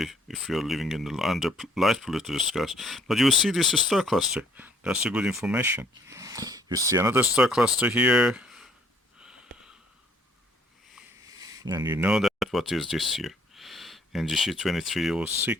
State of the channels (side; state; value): both; normal; correlation 0.62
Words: if you're living in the under light polluted skies. But you will see this star cluster. That's a good information. You see another star cluster here, and you know that what is this here. NGC